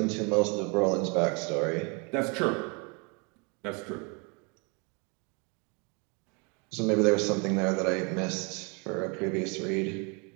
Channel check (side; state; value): left; quieter; 32.8 dB